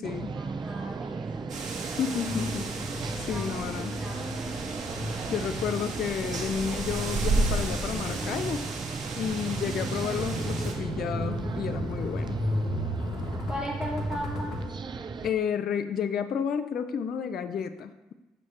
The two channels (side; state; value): both; normal; correlation 0.69